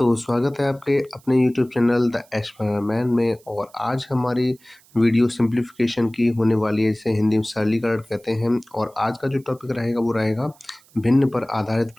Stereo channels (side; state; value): right; noise; hiss, 29 dB below the sound